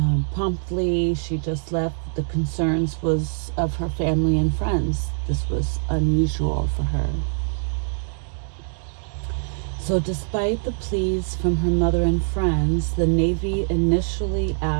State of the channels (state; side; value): silent; left; digital silence